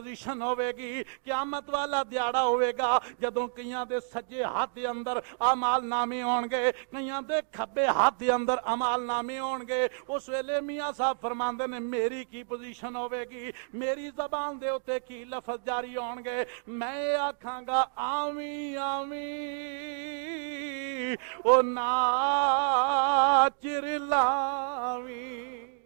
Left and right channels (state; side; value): silent; left; digital silence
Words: ہوے گی، قیامت والا دیاڑا ہوے گا جدوں کئیاں دے سجے ہاتھ دے اندر اعمال نامے ہون گے، کئیاں دے کھبے ہاتھ دے اندر اعمال نامے ہون گے۔ اس ویلے میاں صاحب فرماندے نے میری کی پوزیشن ہوے گی، میری زبان دے اوتے کی لفظ جاری ہون گے، میں آکھاں گا آمین آمین او ناچر لاویں،